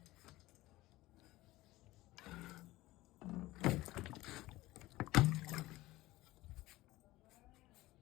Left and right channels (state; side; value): quieter; right; 18.2 dB